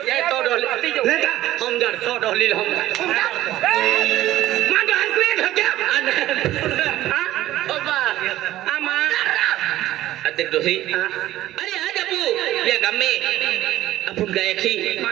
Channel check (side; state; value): left; quieter; 14.7 dB